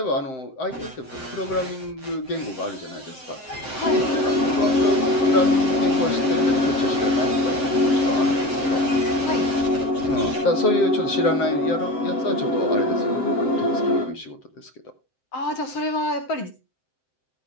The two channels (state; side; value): late; right; 7.7 ms